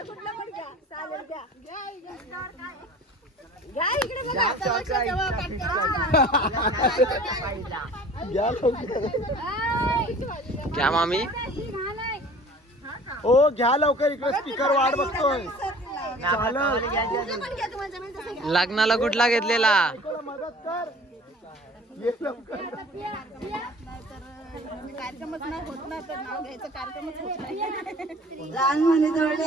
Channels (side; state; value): both; normal; correlation 0.46